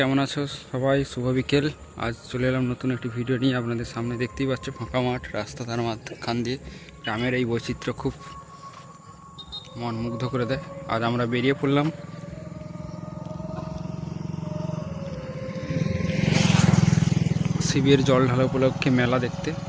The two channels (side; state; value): both; identical; correlation 1.00